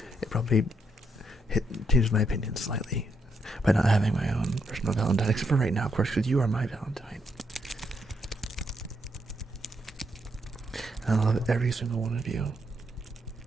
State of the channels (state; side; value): normal; both; correlation 0.77